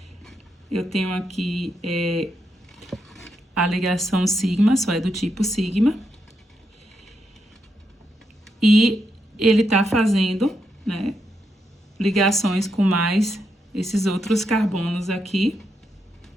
eu tenho aqui a ligação sigma, só é do tipo sigma. E ele tá fazendo, né, ligações com mais esses outros carbonos aqui.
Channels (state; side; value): normal; both; correlation 0.82